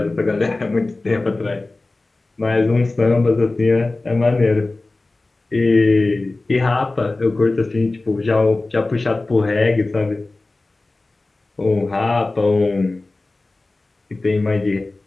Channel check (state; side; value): quieter; right; 3.2 dB